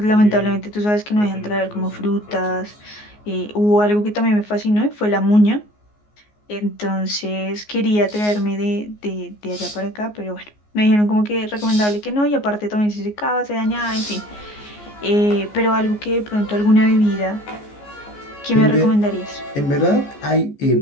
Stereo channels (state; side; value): late; right; 14 ms